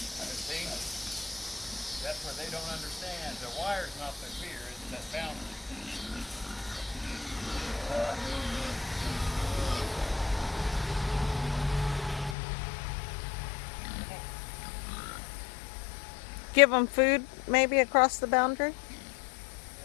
See? That's what they don't understand. The wire's not their fear, it's that boundary. Give them food maybe across the boundary?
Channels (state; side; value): drops out; right; at 12.4 s